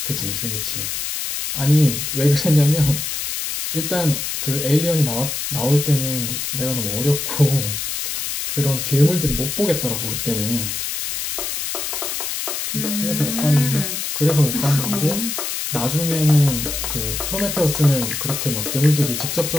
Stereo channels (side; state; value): left; noise; hiss, 3 dB below the sound